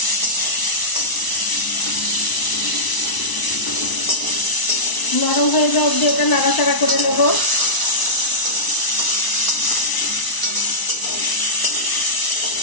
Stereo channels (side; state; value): right; late; 1.0 ms